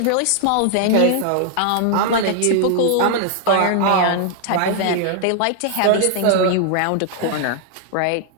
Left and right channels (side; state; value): both; different; correlation 0.00